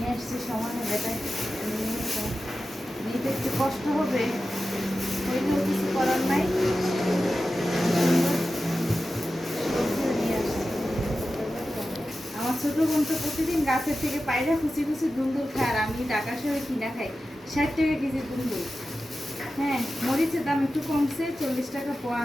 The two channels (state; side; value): normal; both; correlation 0.93